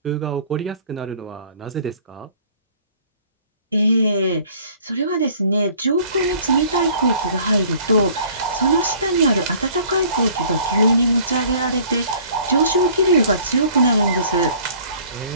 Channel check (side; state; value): both; inverted; correlation -0.53